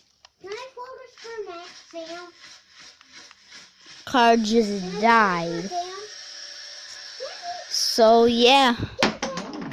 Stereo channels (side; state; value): both; identical; correlation 1.00